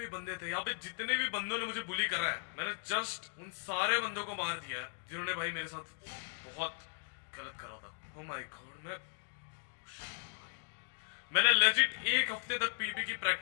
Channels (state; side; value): silent; right; 53 dB below the other